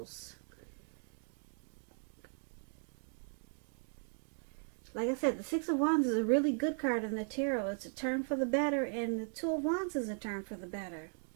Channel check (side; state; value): left; silent; 53 dB below the other